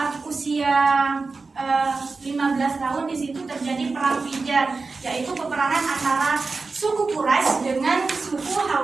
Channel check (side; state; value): left; quieter; 4.1 dB